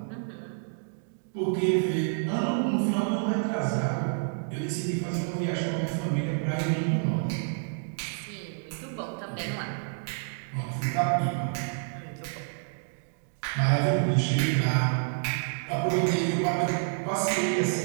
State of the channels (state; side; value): silent; left; digital silence